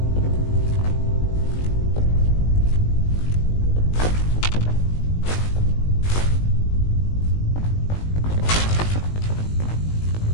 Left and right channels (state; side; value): late; right; 19 ms